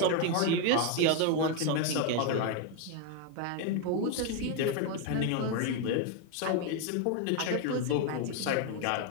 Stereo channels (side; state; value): both; different; correlation 0.01